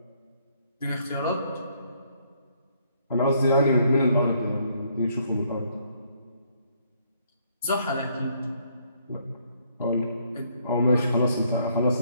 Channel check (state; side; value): inverted; both; correlation -0.68